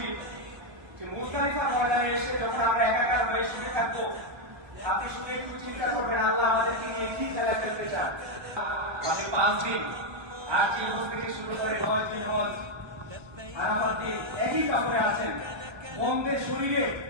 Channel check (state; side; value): late; left; 1.3 ms